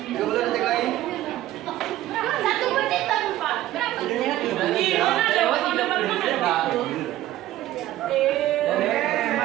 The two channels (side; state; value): left; quieter; 14.4 dB